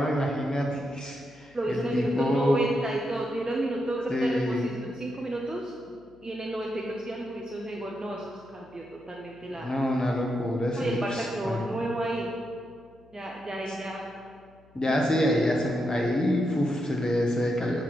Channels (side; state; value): left; noise; hum, 28 dB below the sound